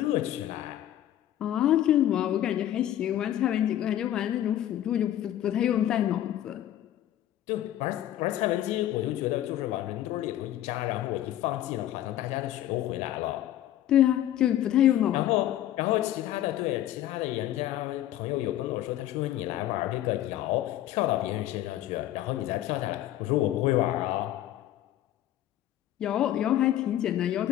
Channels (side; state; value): right; quieter; 12.6 dB